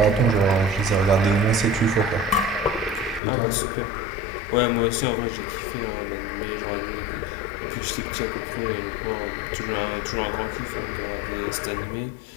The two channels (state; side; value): drops out; right; at 3.2 s